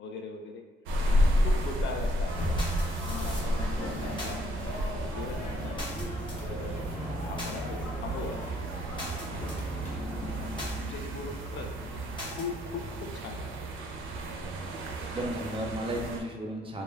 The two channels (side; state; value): both; normal; correlation 0.68